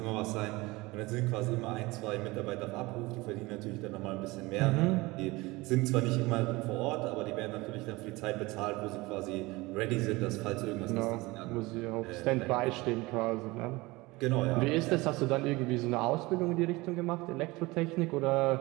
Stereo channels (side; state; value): left; quieter; 22.0 dB